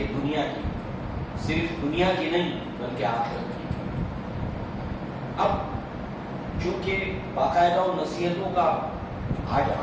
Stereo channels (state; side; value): identical; both; correlation 1.00